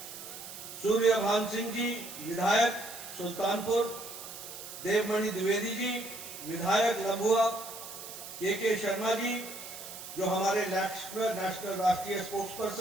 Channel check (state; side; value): noise; right; hiss, 11 dB below the sound